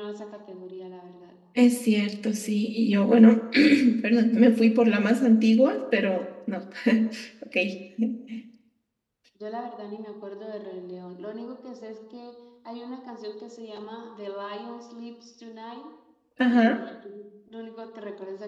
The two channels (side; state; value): both; identical; correlation 1.00